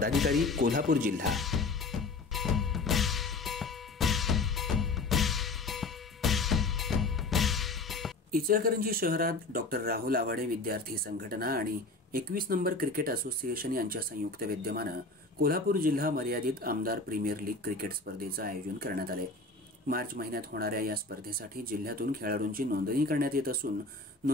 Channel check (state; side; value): quieter; right; 3.5 dB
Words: कोल्हापूर जिल्हा. इचलकरंजी शहरात डॉक्टर राहुल आवाडे विद्यार्थी संघटना आणि 21 नंबर क्रिकेट असोसिएशन यांच्या संयुक्त विद्यमानं कोल्हापूर जिल्हा मर्यादित आमदार प्रीमियर लीग क्रिकेट स्पर्धेचं आयोजन करण्यात आले. मार्च महिन्यात होणाऱ्या या स्पर्धेसाठी जिल्ह्यातून खेळाडूंची नोंदणी करण्यात येत असून